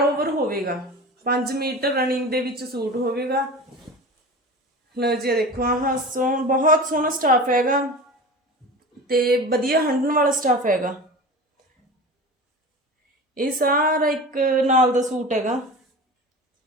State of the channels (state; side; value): normal; both; correlation 0.33